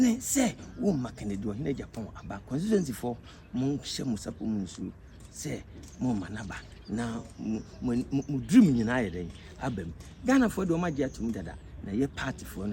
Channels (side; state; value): both; identical; correlation 1.00